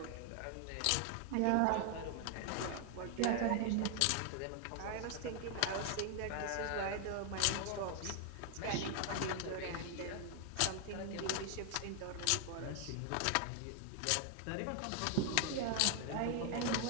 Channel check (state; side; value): different; both; correlation 0.00